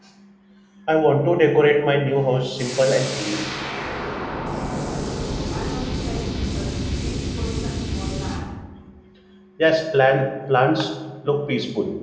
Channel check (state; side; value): identical; both; correlation 1.00